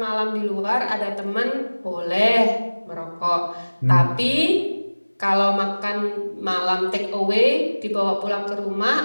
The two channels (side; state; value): both; inverted; correlation -1.00